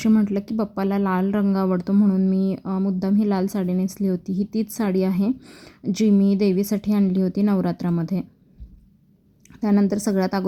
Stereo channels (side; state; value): both; identical; correlation 1.00